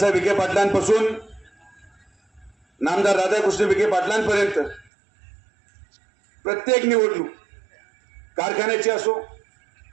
विखे पाटलांपासून नामदार राधाकृष्ण विखे पाटलांपर्यंत प्रत्येक निवडणूक कारखान्याची असो,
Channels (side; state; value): left; drops out; at 4.9 s